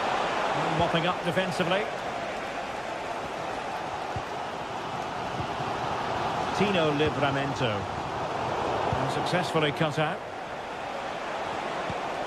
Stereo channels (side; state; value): both; identical; correlation 1.00